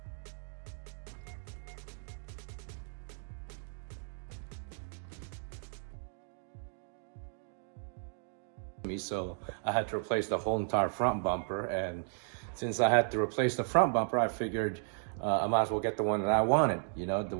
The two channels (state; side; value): silent; left; 55 dB below the other